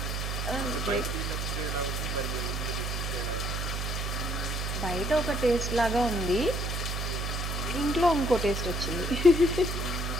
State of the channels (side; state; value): right; noise; hum, 2 dB below the sound